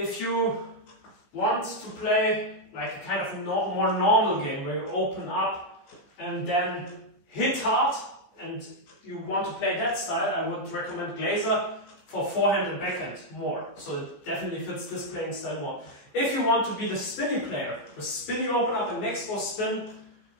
you want to play like a kind of more normal game where you open up and then hit hard, and you want to play that style, I would recommend Glayzer for forehand and backhand more. So it definitely fits this playing style more. If you want to be the spinny player, the spinny open up and next ball spin,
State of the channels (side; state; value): right; late; 14 ms